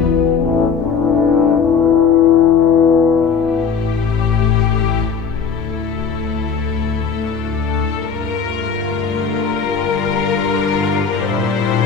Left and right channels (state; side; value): quieter; right; 6.0 dB